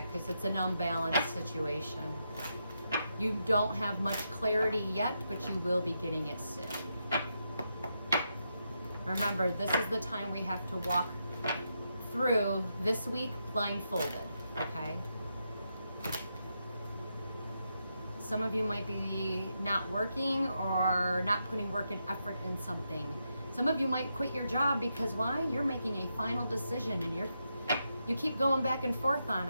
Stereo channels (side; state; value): both; inverted; correlation -0.84